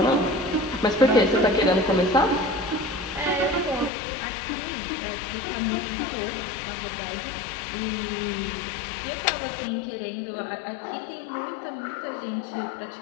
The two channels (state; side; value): drops out; right; at 3.9 s